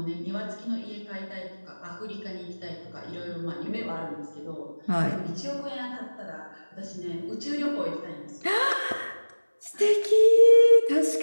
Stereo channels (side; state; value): both; inverted; correlation -1.00